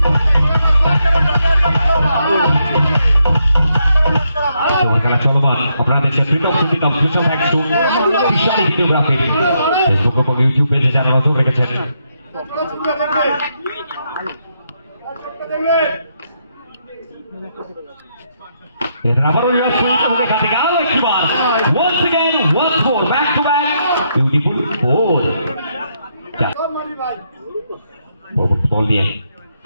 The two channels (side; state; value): both; inverted; correlation -0.78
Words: খেলা চলমান। আপনারা দেখছেন প্রীতম সিদ্দিকম স্পেশাল থ্যাঙ্কস টু বিশালী ভিডিওগ্রাফি ফেসবুক এবং ইউটিউব পেজে যারা নজর রেখেছেন। আবারও রিভার্স সুইপ এবং এখান থেকে আরো একবার once again once more back to back beautiful four বল নিয়ে